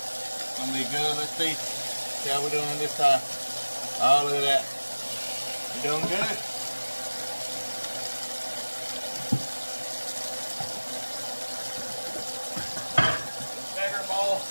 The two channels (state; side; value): inverted; both; correlation -1.00